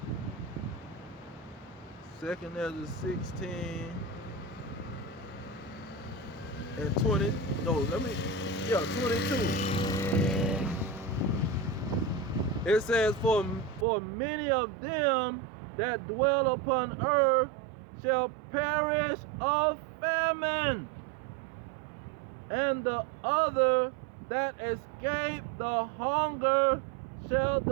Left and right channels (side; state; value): left; drops out; at 13.9 s